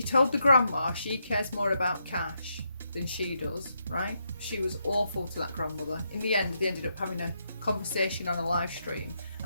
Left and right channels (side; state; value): both; inverted; correlation -0.80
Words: told the grandma she cares more about Cash than she does, right? She was awful to that grandmother. In the end, they ended up having a conversation on a live stream